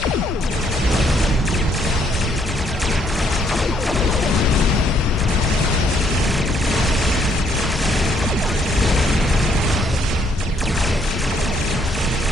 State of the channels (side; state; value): both; normal; correlation 0.69